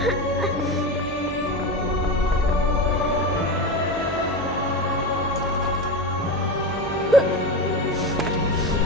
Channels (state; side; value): normal; both; correlation 0.21